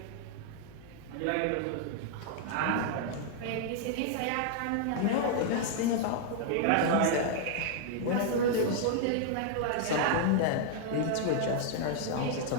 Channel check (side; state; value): both; different; correlation 0.00